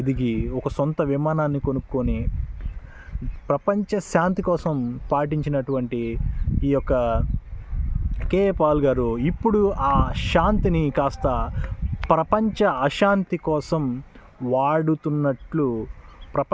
ఒక సొంత విమానాన్ని కొనుక్కొని ప్రపంచ శాంతి కోసం పాటించినటువంటి ఈ యొక్క కేఏ పాల్ గారు ఇప్పుడు ఆ శాంతిని కాస్త ప్రపంచ అశాంతి కోసం వాడుతున్నట్లు,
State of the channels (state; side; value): identical; both; correlation 1.00